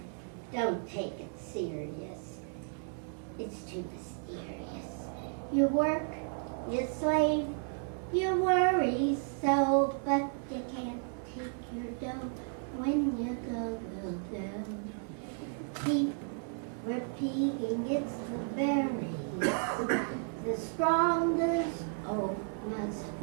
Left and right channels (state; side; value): silent; left; 55 dB below the other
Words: Don't take it serious. It's too mysterious. You work, you slave, you worry so, but you can't take your dough when you go. Keep repeating, it's the berries. The strongest oak must